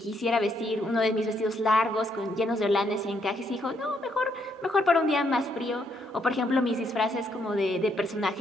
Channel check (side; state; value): both; normal; correlation 0.74